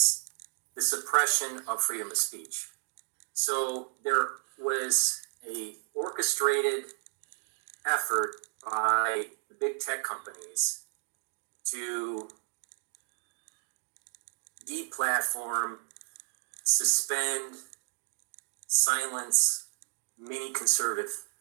the suppression of freedom of speech. So there was a orchestrated effort by the big tech companies to deplatform, suspend, silence many conservative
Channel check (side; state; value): left; silent; digital silence